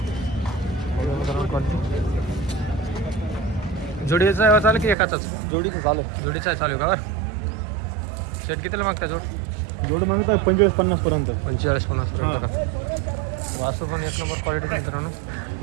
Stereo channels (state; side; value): drops out; left; at 5.0 s